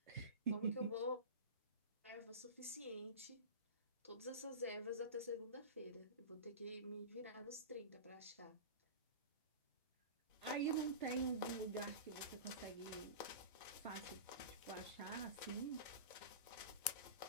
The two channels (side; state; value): both; inverted; correlation -0.30